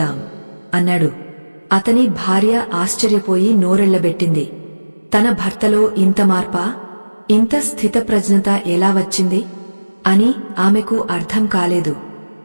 అన్నాడు. అతని భార్య ఆశ్చర్యపోయి నోరెళ్లబెట్టింది. తన భర్తలో ఇంత మార్పా, ఇంత స్థితప్రజ్ఞత ఎలా వచ్చింది అని ఆమెకు అర్థం కాలేదు.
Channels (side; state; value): both; inverted; correlation -1.00